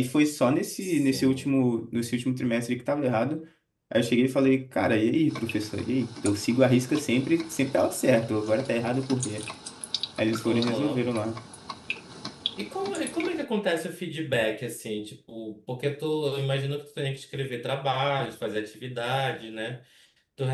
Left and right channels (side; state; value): both; identical; correlation 1.00